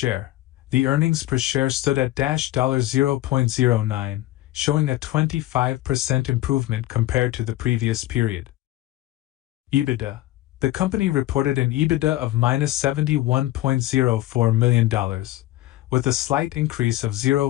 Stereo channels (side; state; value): right; quieter; 15.8 dB